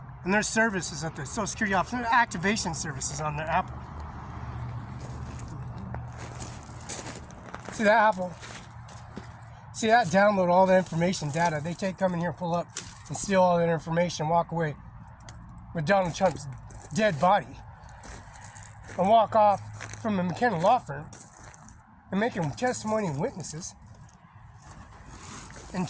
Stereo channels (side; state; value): both; identical; correlation 1.00